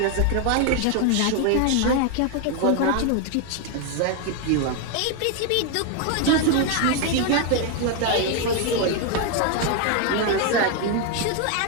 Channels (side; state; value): both; different; correlation 0.01